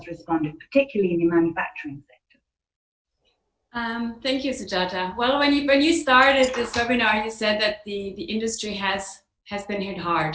responded, particularly in the manufacturing sector. Thank you, Sujata. Well, when you started this webinar, you said that the industry has been hit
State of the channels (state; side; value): identical; both; correlation 1.00